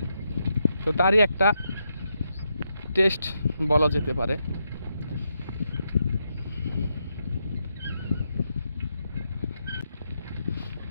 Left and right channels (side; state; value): both; inverted; correlation -0.82